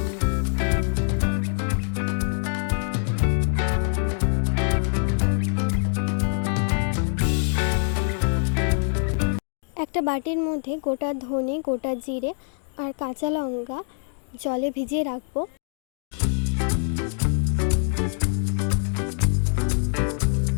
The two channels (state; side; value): silent; right; digital silence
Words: একটা বাটির মধ্যে গোটা ধনে, গোটা জিরে আর কাঁচা লঙ্কা জলে ভিজিয়ে রাখবো।